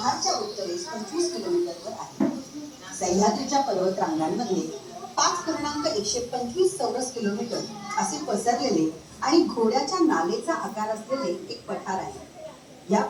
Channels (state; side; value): identical; both; correlation 1.00